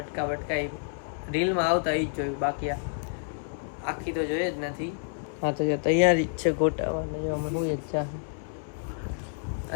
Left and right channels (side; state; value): right; silent; digital silence